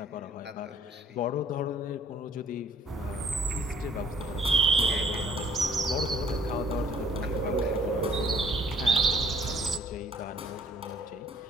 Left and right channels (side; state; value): both; normal; correlation 0.60